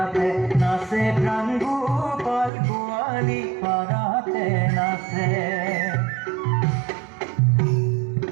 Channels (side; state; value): left; drops out; at 2.5 s